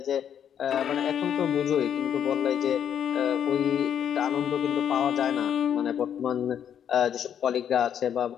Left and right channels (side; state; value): right; quieter; 9.0 dB